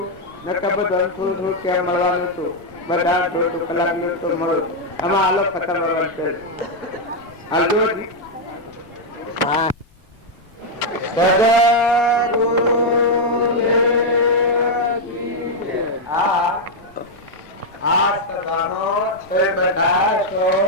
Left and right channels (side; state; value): left; noise; rumble, 29 dB below the sound